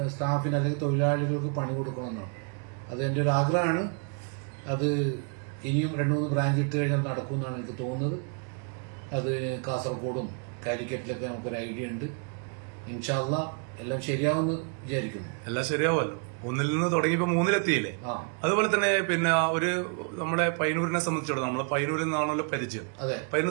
സ്റ്റാഫിന് അല്ലെങ്കിൽ തൊഴിലാളികൾക്ക് പണി കൊടുക്കണമെന്നാണ്. അത് എന്റെ ഒരു ആഗ്രഹമാണ്. അത് ഇനിയും 2-3 ബ്രാഞ്ച് ഇട്ട് കഴിഞ്ഞാൽ നടക്കുമെന്നാണ് എനിക്ക് തോന്നുന്നത്. അത് കാസർഗോഡും കാലിക്കറ്റിലൊക്കെ നമുക്കൊരു ഐഡിയ ഉണ്ട്. ഇൻഷാ അല്ലാഹ് എല്ലാം ശരിയാവുമെന്ന് വിചാരിക്കുന്നു. എല്ലാം ശരിയാവുമല്ലോ. 1 നിന്ന് തുടങ്ങിയപ്പോ 3-ലെത്തിയില്ലേ? അതുപോലെ തന്നെ പിന്നെ ഒരു നമ്മുടെ പയ്യന്നൂരിനെ സംബന്ധിച്ചിടത്തോളം, നമ്മളെ പയ്യന്നൂരിൽ നിന്നാണല്ലോ പരിചയം.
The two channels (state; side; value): quieter; left; 39.6 dB